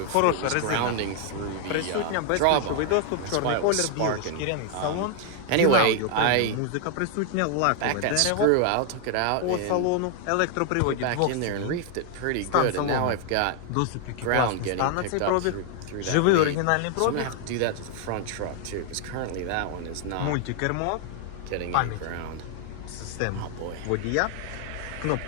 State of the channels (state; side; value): different; both; correlation 0.00